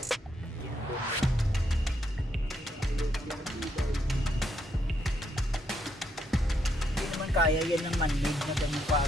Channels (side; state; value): both; normal; correlation 0.76